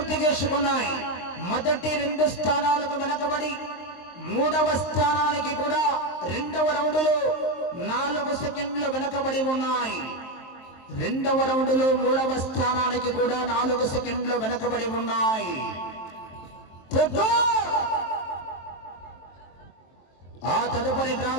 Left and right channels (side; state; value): right; late; 23 ms